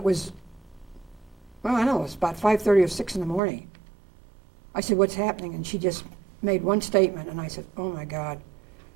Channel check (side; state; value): left; drops out; at 3.4 s